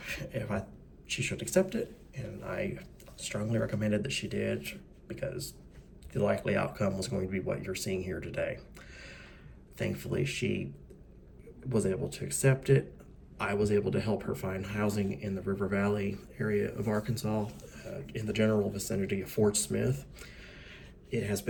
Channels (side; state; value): both; identical; correlation 1.00